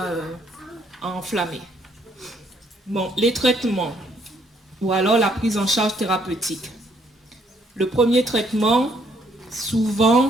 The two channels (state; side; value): normal; both; correlation 0.68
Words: enflammés. Bon, les traitements ou alors la prise en charge thérapeutique. Le premier traitement, souvent,